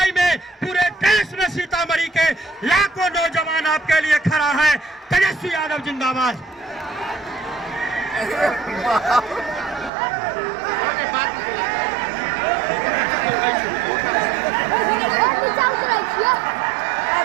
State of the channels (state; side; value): drops out; left; at 9.9 s